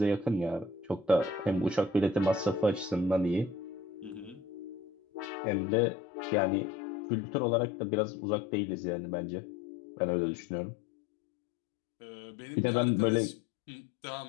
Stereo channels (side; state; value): right; drops out; at 5.3 s